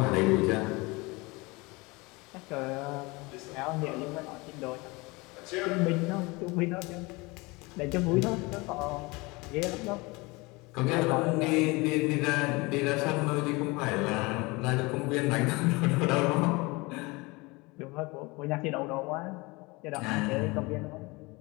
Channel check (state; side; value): quieter; right; 24.8 dB